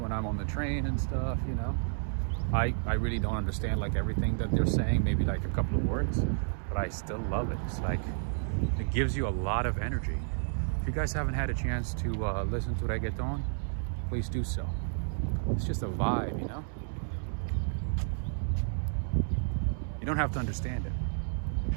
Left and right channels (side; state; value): left; silent; 57 dB below the other